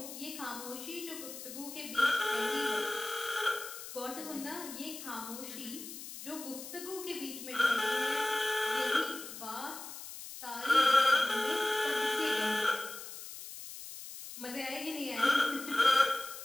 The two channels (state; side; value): noise; left; hiss, 11 dB below the sound